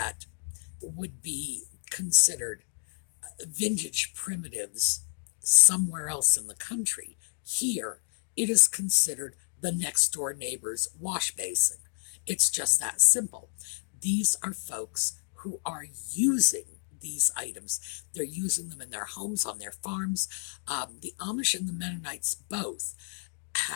would be considered vintage primitives somewhere else in the country. Here, it is considered the next door neighbor's wash basin. It's just that simple. These are folks who are using these items. They're using them in their homes, on their farms. The Amish and the Mennonites both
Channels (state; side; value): silent; right; digital silence